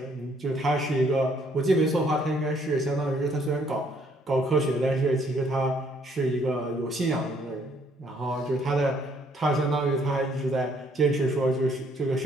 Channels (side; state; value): both; normal; correlation 0.66